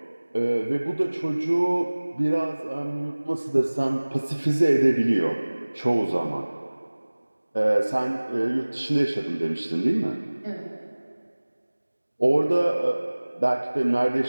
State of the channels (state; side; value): inverted; both; correlation -1.00